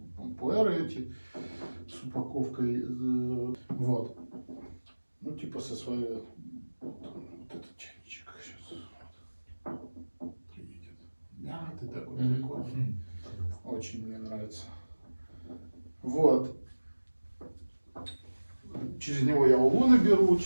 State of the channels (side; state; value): both; inverted; correlation -1.00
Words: пуэры эти с упаковкой. Вот. Ну, типа со своей... Вот этот чайничек сейчас. Приедет. Мятый такой прикольный. Очень мне нравится. Вот. Через него я улуны беру,